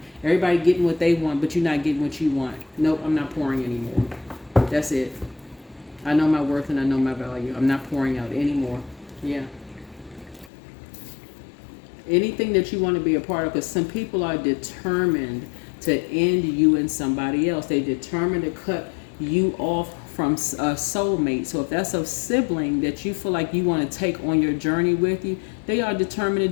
everybody getting what they want, but you're not getting what you want. Nope, I'm not pouring anymore. That's it. I know my worth and I know my value. I'm not pouring out anymore. Yeah. Anything that you want to be a part of, because some people are determined to end you and somebody else. They determined to cut you off from a soulmate. So if that's a sibling that you feel like you want to take on your journey with you, they are determined to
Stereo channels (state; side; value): drops out; right; at 10.5 s